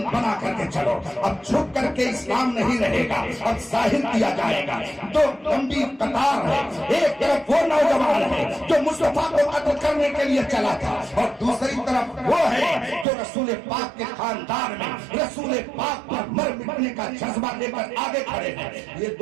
بنا کر کے چلو، اب چھپ کر کے اسلام نہیں رہے گا، اب ظاہر کیا جائے گا۔ تو لمبی قطار ہے، ایک طرف وہ نوجوان ہے جو مصطفیٰ کو قتل کرنے کے لیے چلا تھا اور دوسری طرف وہ ہے جو رسول پاک کے خاندان میں رسول پاک پر مر مٹنے کا جذبہ لے کر آگے کھڑے ہیں۔ یہ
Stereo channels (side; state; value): left; drops out; at 13.1 s